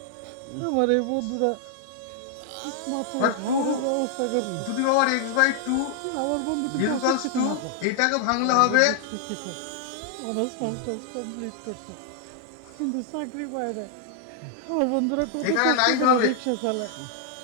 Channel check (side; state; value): both; different; correlation -0.01